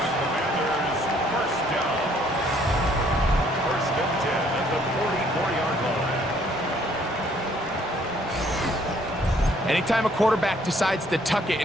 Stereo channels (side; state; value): both; normal; correlation 0.63